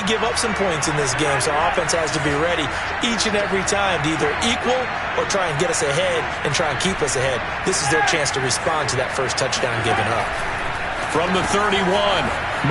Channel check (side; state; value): both; identical; correlation 1.00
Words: give up some points in this game, so our offense has to be ready each and every time to either equal or try and get us ahead and try and keep us ahead. This is their chance to respond to that first touchdown given up. From the 31,